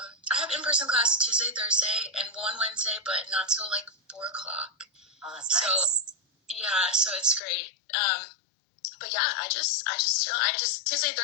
I have in-person class Tuesday, Thursday, and one Wednesday, but not till like 4 o'clock. Oh, that's So, nice. yeah, so it's great. But yeah, I just chill. Tuesday,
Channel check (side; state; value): right; drops out; at 7.4 s